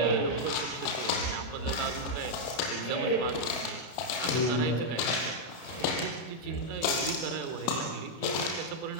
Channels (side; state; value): right; late; 33 ms